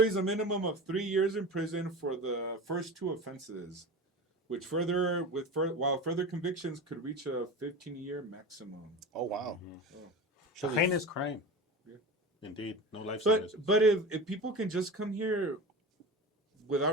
a minimum of 3 years in prison for the first two offenses, which while further convictions could reach a 15-year maximum. Oh wow. Oh. She'll be- Heinous crime. Yeah. Indeed. No life But sentences. but if people can just come here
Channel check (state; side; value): normal; both; correlation 0.30